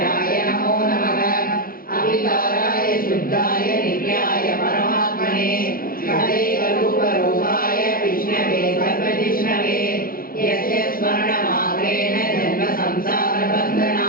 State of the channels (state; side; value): late; right; 0.42 ms